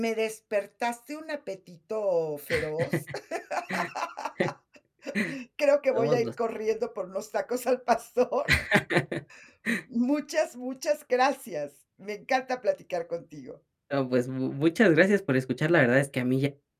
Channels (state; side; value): identical; both; correlation 1.00